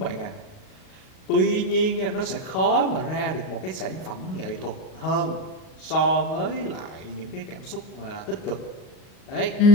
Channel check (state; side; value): late; right; 38 ms